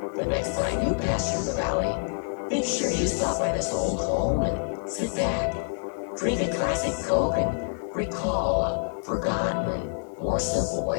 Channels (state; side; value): silent; right; 60 dB below the other